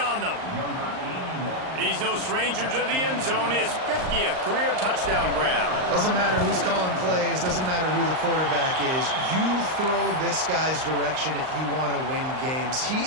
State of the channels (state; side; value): late; left; 38 ms